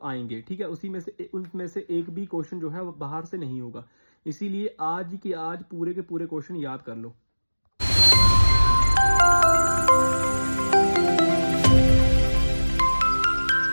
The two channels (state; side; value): inverted; both; correlation -1.00